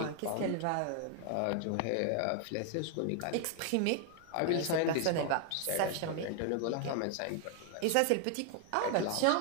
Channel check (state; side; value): different; both; correlation 0.00